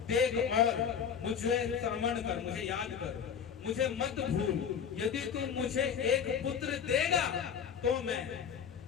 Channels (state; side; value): quieter; right; 7.5 dB